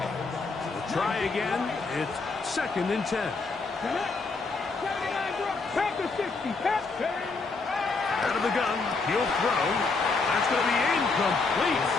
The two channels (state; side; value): quieter; right; 4.1 dB